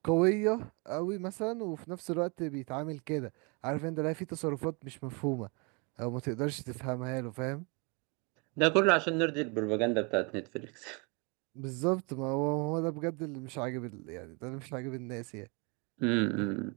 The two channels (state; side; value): quieter; left; 32.1 dB